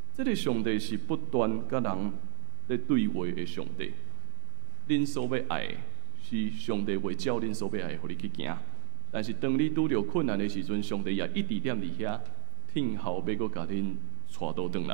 这个上帝是不断甲人咧对话的上帝。恁所要爱的是上帝会照恁所要爱的，互你去行。但是当你拄着困难的时阵，上帝也一直踮伫遐，听候要阁甲恁带倒转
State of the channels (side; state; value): left; silent; 57 dB below the other